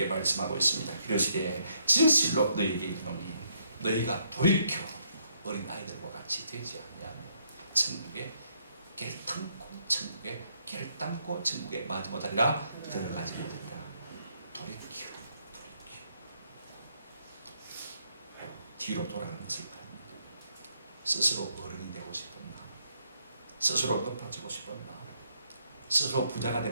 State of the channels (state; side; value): inverted; both; correlation -0.73